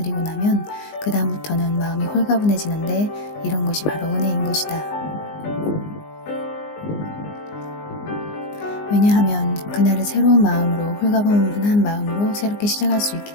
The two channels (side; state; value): right; late; 19 ms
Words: 나면 그 다음부터는 마음이 홀가분해지는데, 이런 것이 바로 은혜인 것이다. 왜냐하면 그날을 새로운 마음으로, 홀가분한 마음으로 새롭게 시작할 수